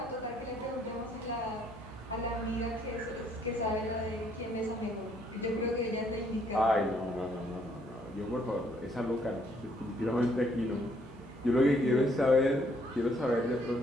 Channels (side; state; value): both; normal; correlation 0.67